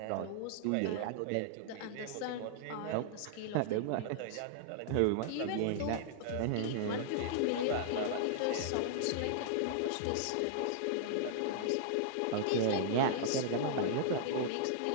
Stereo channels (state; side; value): different; both; correlation -0.01